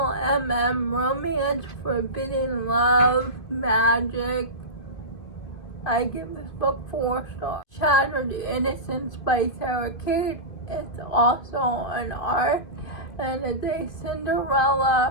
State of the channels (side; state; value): right; late; 2.2 ms